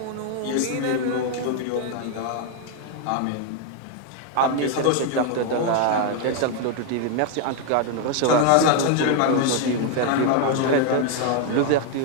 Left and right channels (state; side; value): different; both; correlation 0.00